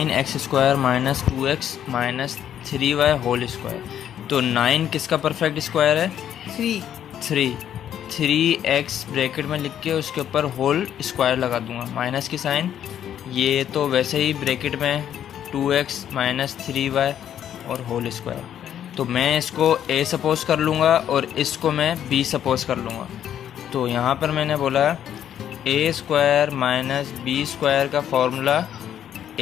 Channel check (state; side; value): quieter; right; 10.1 dB